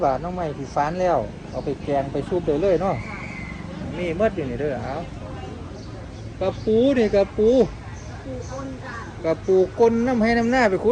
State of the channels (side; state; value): both; identical; correlation 1.00